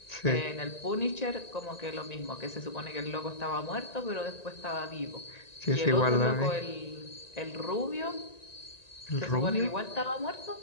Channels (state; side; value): late; right; 1.9 ms